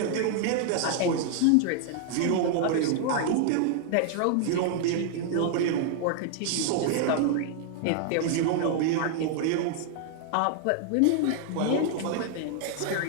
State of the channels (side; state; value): both; different; correlation 0.00